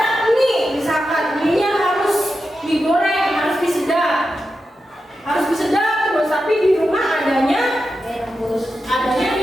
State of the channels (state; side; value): normal; both; correlation 0.89